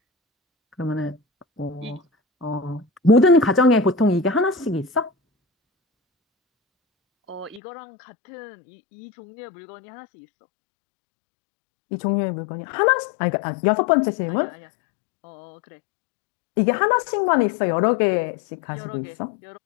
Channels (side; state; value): right; drops out; at 7.6 s